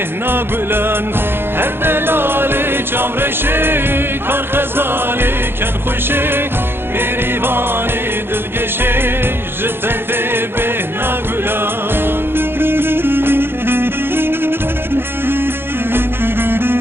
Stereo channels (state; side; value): late; left; 0.11 ms